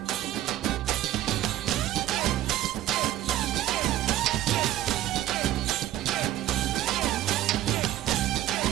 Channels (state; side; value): quieter; left; 13.7 dB